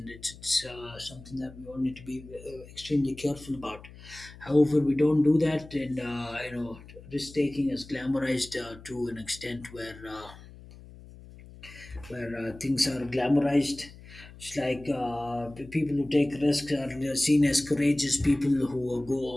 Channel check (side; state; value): left; noise; hum, 18 dB below the sound